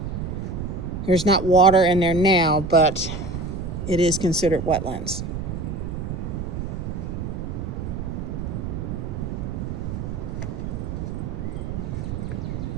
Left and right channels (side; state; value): right; noise; rumble, 4 dB below the sound